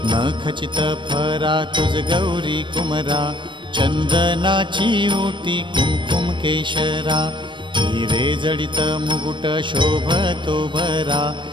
खचित फरा तुझ गौरी कुमरा, चंदनाची ओटी कुमकुम केशरा, हिरे जडित मुकुट शोभतो भरा,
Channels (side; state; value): left; late; 0.23 ms